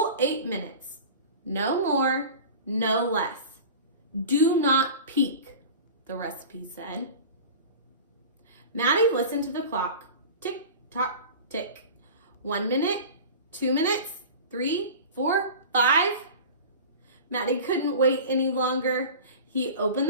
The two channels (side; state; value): both; inverted; correlation -0.35